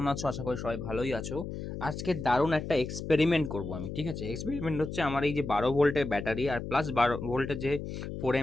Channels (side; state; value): left; noise; hum, 7 dB below the sound